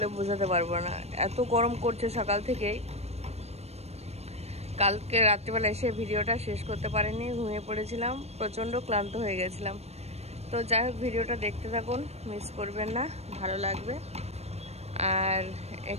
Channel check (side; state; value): left; late; 0.31 ms